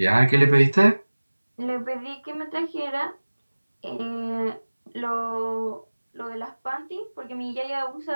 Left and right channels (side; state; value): both; inverted; correlation -1.00